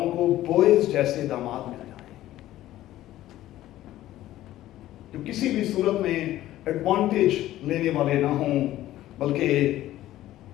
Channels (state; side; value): quieter; right; 14.4 dB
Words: को बोएज जैसे दामाद मिल जाएं, जो किसी भी सूरत में एडवांटेज लेने वाले ना हों, बल्कि